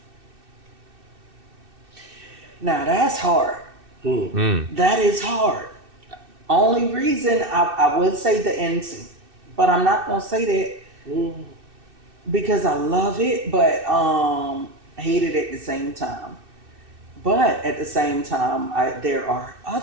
Now, that's hard. That is hard. Only reason I would say the end scene, but I'm not going to say that because I love it, but hate it at the same time. But at the same time, there are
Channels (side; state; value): left; late; 2.6 ms